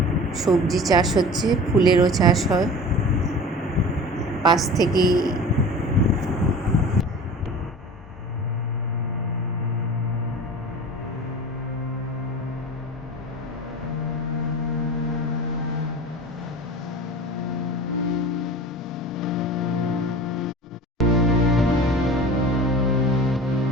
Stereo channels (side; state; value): both; normal; correlation 0.38